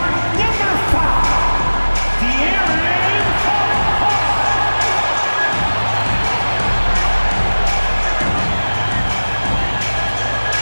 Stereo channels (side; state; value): both; inverted; correlation -1.00